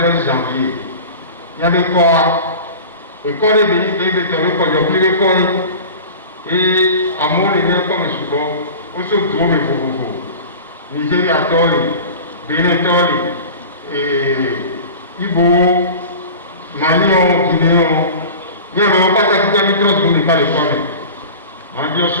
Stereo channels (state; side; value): inverted; both; correlation -0.35